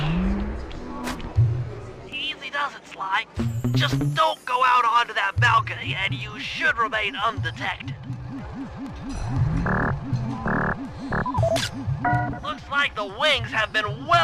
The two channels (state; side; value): identical; both; correlation 1.00